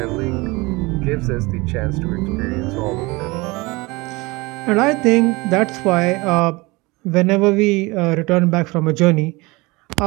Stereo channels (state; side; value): quieter; left; 23.8 dB